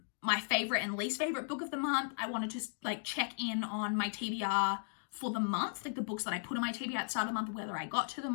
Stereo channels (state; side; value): silent; right; digital silence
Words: favorite and least favorite book of the month. I wanted to like check in on my TBR for the month, like the books that I put on my TBR at the start of the month, whether I got to